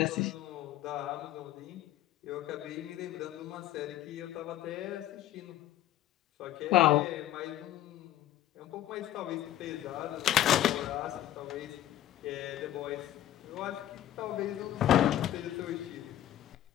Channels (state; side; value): quieter; right; 13.0 dB